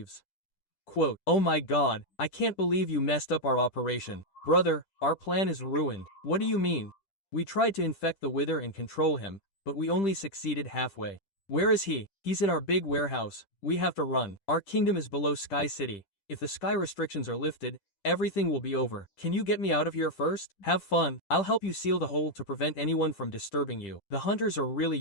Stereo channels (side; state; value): right; late; 10 ms